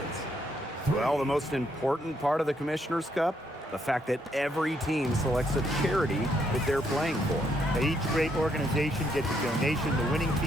Well, the most important part of the Commissioner's Cup, the fact that every team selects a charity that they're playing for. Each great organization gets a donation. The winning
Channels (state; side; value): normal; both; correlation 0.74